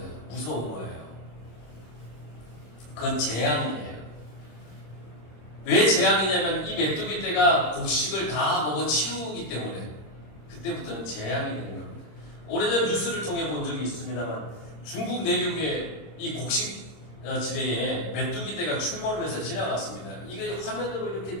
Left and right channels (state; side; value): late; right; 26 ms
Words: 무서운 거예요. 그건 재앙이에요. 왜 재앙이냐면 이 메뚜기 떼가 곡식을 다 먹어 치우기 때문에 그때부터는 재앙이 되는 겁니다. 오래전 뉴스를 통해 본 적이 있습니다만 중국 내륙의 이 곡식 지대에 메뚜기 떼가 출몰을 해서 지나갔습니다. 이게 화면으로